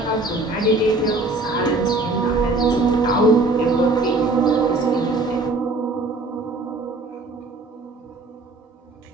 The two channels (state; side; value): quieter; left; 3.1 dB